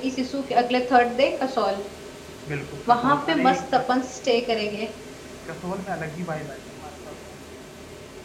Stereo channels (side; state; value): both; identical; correlation 1.00